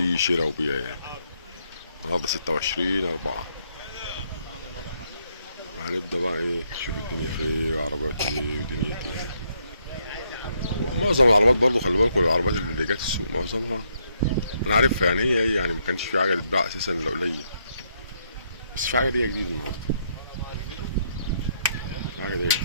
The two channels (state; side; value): inverted; both; correlation -0.74